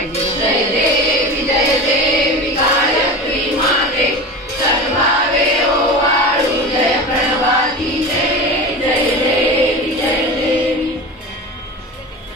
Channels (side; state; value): both; normal; correlation 0.30